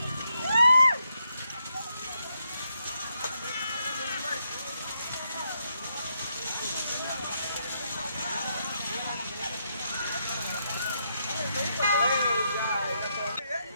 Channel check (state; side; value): inverted; both; correlation -0.80